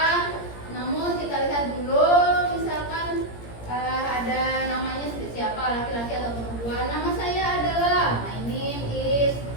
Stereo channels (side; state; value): right; late; 17 ms